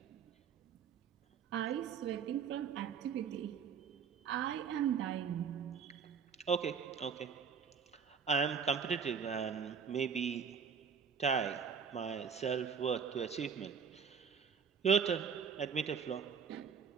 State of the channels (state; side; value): quieter; left; 6.6 dB